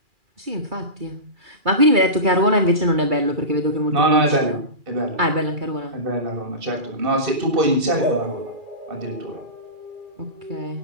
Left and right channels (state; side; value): late; left; 2.4 ms